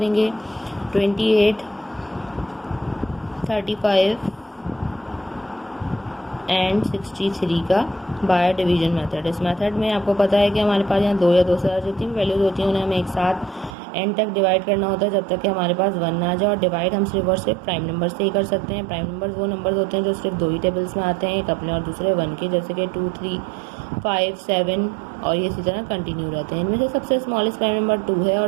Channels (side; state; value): left; drops out; at 13.8 s